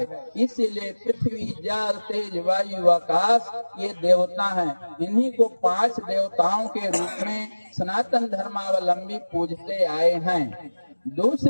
इसीलिए पृथ्वी, जल, तेज, वायु, आकाश ये देवता हैं। इन्हीं को 5 देवताओं के रूप में सनातन धर्मावलंबी पूजते आए हैं।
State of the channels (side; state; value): both; inverted; correlation -1.00